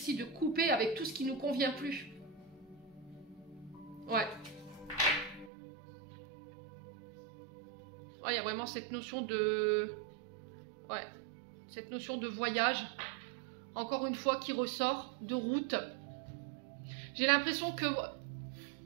de couper avec tout ce qui nous convient plus. Ouais. Ouais, il y a vraiment cette notion de... Ouais. Cette notion de voyage. Encore une fois, qui ressort, de route. J'ai l'impression que...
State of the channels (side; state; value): left; drops out; at 5.5 s